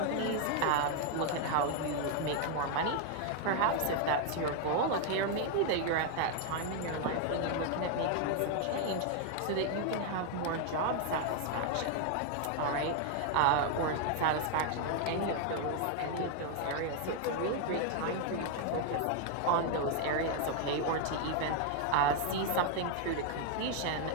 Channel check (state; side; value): different; both; correlation 0.01